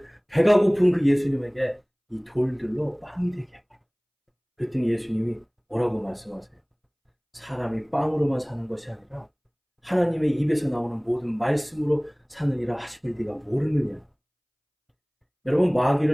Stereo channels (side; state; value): both; identical; correlation 1.00